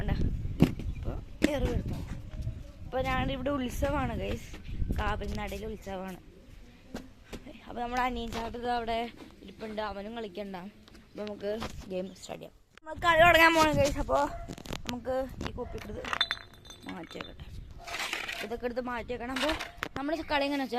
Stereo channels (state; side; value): identical; both; correlation 1.00